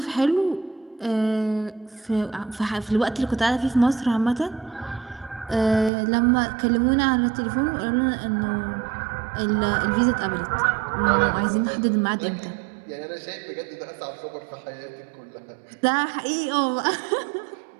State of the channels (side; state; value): left; drops out; at 5.9 s